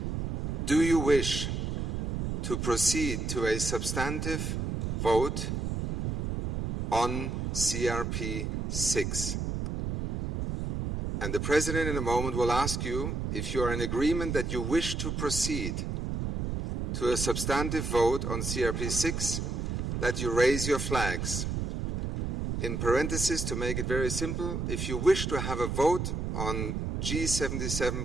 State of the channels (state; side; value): noise; right; rumble, 2 dB below the sound